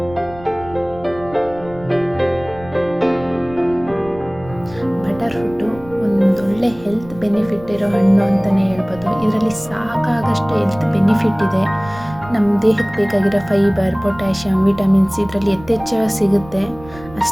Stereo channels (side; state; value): right; noise; rumble, 18 dB below the sound